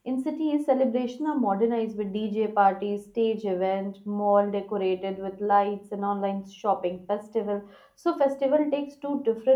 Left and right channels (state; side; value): identical; both; correlation 1.00